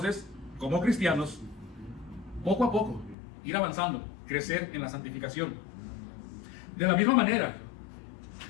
como cristianos, poco a poco, ir avanzando, crecer en la santificación. De la misma manera,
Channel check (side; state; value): right; drops out; at 3.2 s